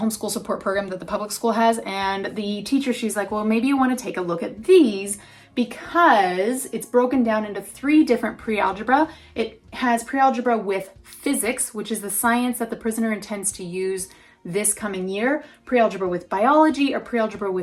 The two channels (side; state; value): both; identical; correlation 1.00